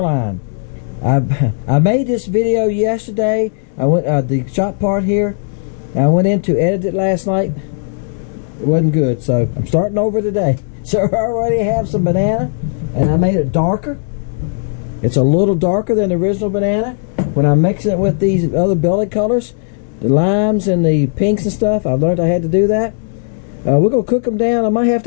I made this video yesterday. I went the shot part here. I went in to edit it last night. It wasn't good, so I'm starting over today. So I already have some banana, and I made it darker. It's a little darker than the original banana. When I'm mixing it with these other belly colors, the limes and the pinks and stuff, I learned I had to do that. We're gonna cook them down. I might have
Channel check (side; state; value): right; silent; digital silence